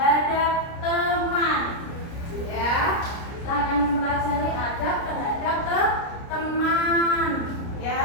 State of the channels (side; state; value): right; late; 29 ms